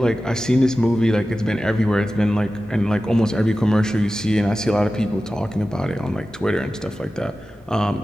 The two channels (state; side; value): normal; both; correlation 0.94